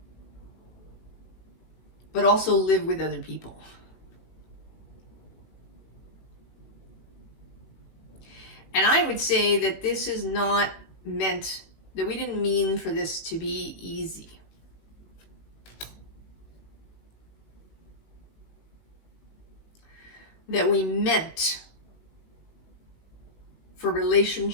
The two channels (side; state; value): right; late; 18 ms